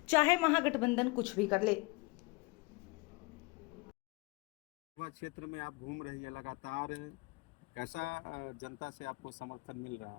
चाहे महागठबंधन कुछ भी कर ले। क्षेत्र में आप घूम रही है लगातार, कैसा जनता से आपको समर्थन मिल रहा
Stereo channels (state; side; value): quieter; right; 25.7 dB